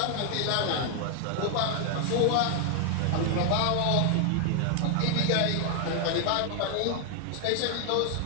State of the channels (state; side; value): different; both; correlation 0.00